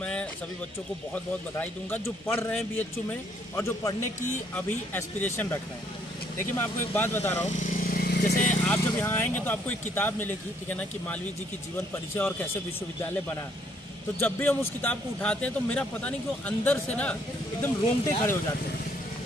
सभी बच्चों को बहुत बहुत बधाई दूंगा जो पढ़ रहे हैं बीएचयू में और जो पढ़ने की अभी एस्पिरेशन रख रहे हैं। देखिए, मैं आपको एक बात बता रहा हूँ, जैसे आप जब यहाँ आएंगे तो आपको एक किताब मिलेगी, ठीक है ना, कि मालवीय जी की जीवन परिचय और कैसे विश्वविद्यालय बना। तो जब भी हम उस किताब को उठाते हैं तो मेरा पता नहीं क्यों अंदर से ना एकदम रोंगटे खड़े हो जाते हैं।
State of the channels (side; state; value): both; normal; correlation 0.67